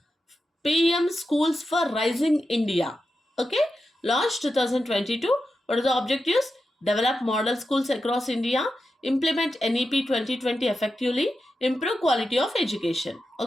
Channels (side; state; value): both; normal; correlation 0.89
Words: PM Schools for Rising India. Okay, launched 2022. What are the objectives? Develop model schools across India, implement NEP 2020 effectively, improve quality of education.